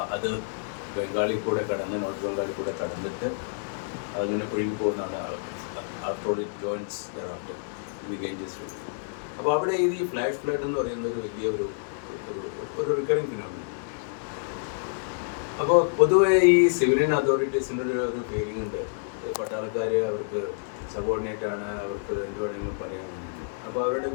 അത് ബംഗാളിൽ കൂടെ കടന്ന് നോർത്ത് ബംഗാളിൽ കൂടെ കടന്നിട്ട് അതിങ്ങനെ ഒഴുകി പോകുന്നതാണ്. After it joins thereafter in the Ganges river. അപ്പോൾ അവിടെ ഈ ഫ്ലാഷ് ഫ്ലഡ് എന്ന് പറയുന്ന ഒരു വലിയ ഒരു റിക്കറിങ് ഫിനോമിനൻ. അപ്പോൾ പൊതുവെ ഈ സിവിലിയൻ അതോറിറ്റീസിൻ്റെ ഒരു ഫീലിംഗ് ഉണ്ട്, പട്ടാളക്കാർ അവർക്ക് സബോർഡിനേറ്റ് ആണ്, അവർക്ക് എന്ത് വേണമെങ്കിലും പറയാനുണ്ട്. അപ്പോൾ അവരുടെ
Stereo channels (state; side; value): silent; right; 59 dB below the other